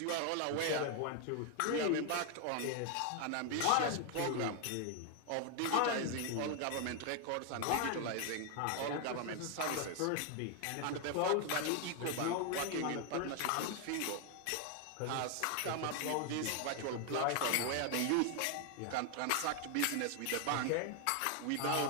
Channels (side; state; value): both; different; correlation 0.01